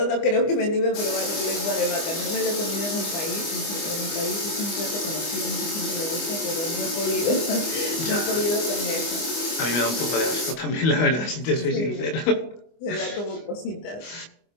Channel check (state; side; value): late; right; 25 ms